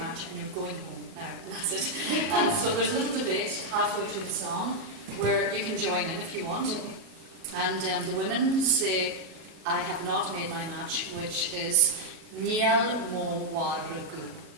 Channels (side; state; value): left; late; 37 ms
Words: and you're going home now. And that's it. And so there's a little debate halfway through the song where you can join in if you want. And the women say, I have not made my match, which is Niel mo waragu.